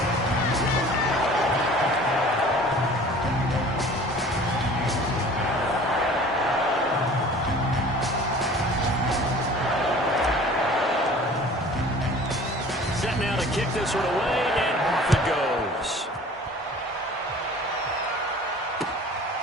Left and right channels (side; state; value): both; normal; correlation 0.46